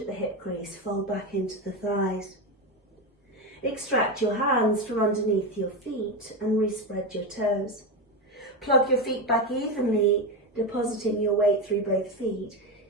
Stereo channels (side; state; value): both; normal; correlation 0.15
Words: the hip crease, fold back into the thighs. Extract your hands from underneath your feet and respread your toes. Plug your feet back evenly, depositing your weight through both feet